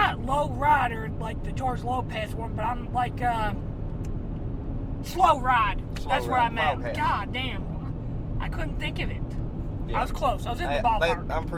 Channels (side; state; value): both; identical; correlation 1.00